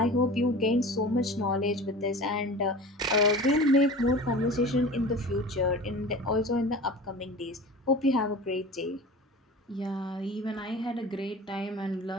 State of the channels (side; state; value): both; normal; correlation 0.36